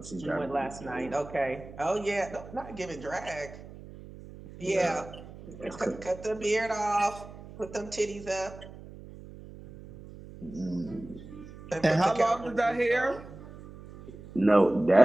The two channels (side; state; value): right; noise; hum, 16 dB below the sound